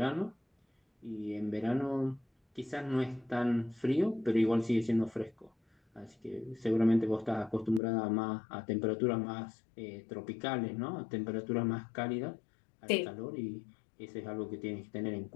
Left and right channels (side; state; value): right; drops out; at 7.8 s